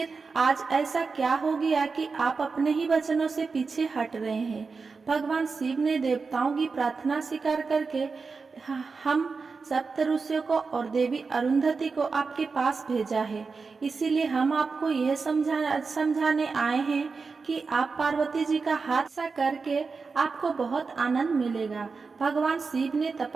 आज ऐसा क्या हो गया कि आप अपने ही वचनों से पीछे हट रहे हैं? भगवान शिव ने देवताओं की प्रार्थना स्वीकार करके हम सप्त ऋषियों को और देवी अरुंधति को आपके पास भेजा है। इसीलिए हम आपको यह समझाने आए हैं कि आप पार्वती जी का हाथ सा करके आपको बहुत आनंद मिलेगा। भगवान शिव ने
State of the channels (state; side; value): quieter; left; 4.6 dB